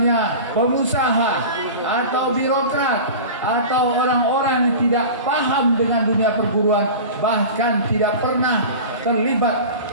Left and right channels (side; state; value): both; inverted; correlation -0.33